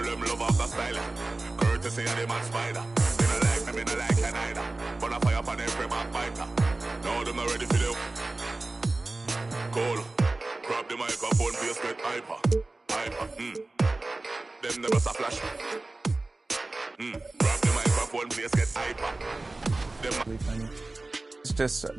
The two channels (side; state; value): left; quieter; 3.1 dB